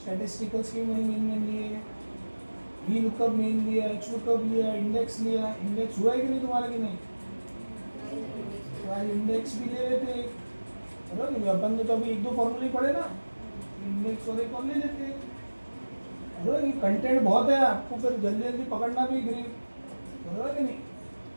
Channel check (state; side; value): inverted; both; correlation -1.00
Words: स्टैटिस्टिकल्स के मैंने मेन लिए, वी लुकअप मेन लिया, एच लुकअप लिया, इंडेक्स लिया। इंडेक्स हुआ है कि नहीं तुम्हारा कि नहीं? तो आज इंडेक्स भी ले लेते एक, बराबर नहीं? अपन ने तो अभी 1-2 फॉर्मूले पढ़े ना, इंडेक्स और एक और ले लेते। बराबर ये कंटेंट बहुत है, आपको फिर जल्दी जल्दी पकड़ना भी ग्रीप, बराबर कि नहीं?